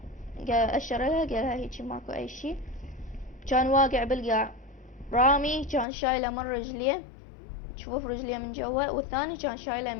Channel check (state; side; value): drops out; right; at 5.9 s